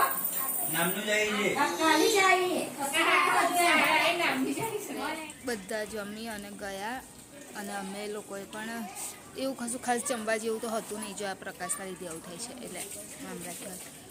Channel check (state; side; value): identical; both; correlation 1.00